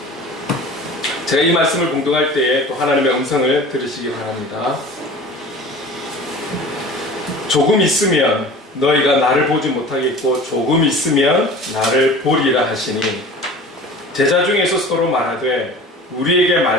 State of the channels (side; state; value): both; normal; correlation 0.41